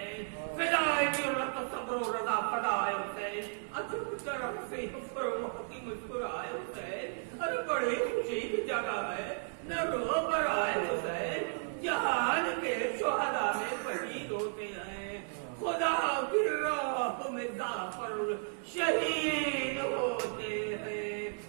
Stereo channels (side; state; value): left; silent; digital silence